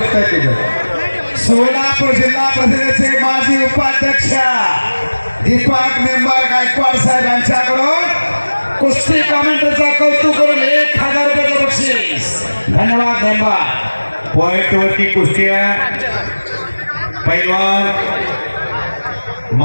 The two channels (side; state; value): both; inverted; correlation -1.00